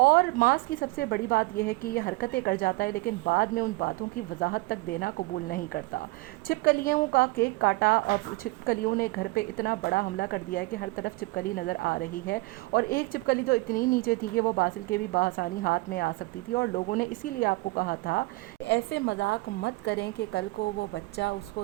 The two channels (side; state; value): left; quieter; 23.1 dB